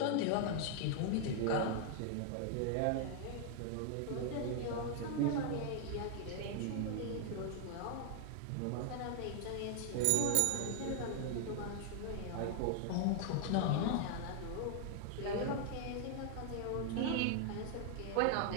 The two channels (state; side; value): different; both; correlation 0.00